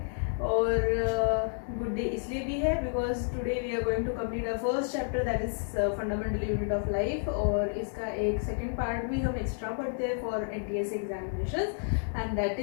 और good day इसलिए भी है because today we are going to complete our first chapter that is fundamental unit of life. और इसका एक second part भी हम extra पढ़ते हैं for NTS examinations and that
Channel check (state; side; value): silent; right; digital silence